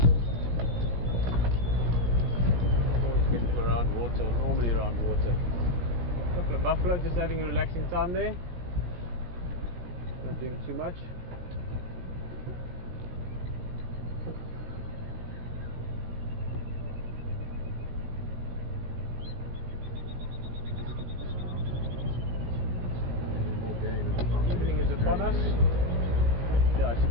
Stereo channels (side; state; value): left; late; 17 ms